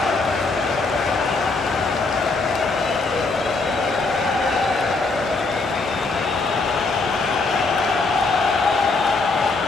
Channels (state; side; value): quieter; right; 3.7 dB